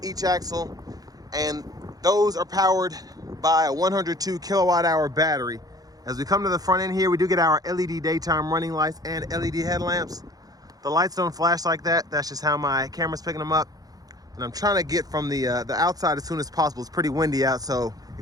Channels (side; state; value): left; late; 0.18 ms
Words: each axle, and those are powered by a 102 kilowatt hour battery. As we come to the front end here, we do get our LED daytime running lights and LED headlamps. The lights don't flash like that. That's just how my camera's picking them up. And I'm trying to get from the outside as soon as possible. It's pretty windy out, so